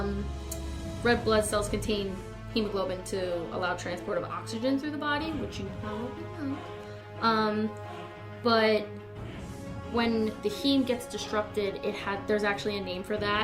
red blood cells contain hemoglobin to allow transport of oxygen through the body, which you probably know. But when the heme gets disrupted, there's actually a name for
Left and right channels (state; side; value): identical; both; correlation 1.00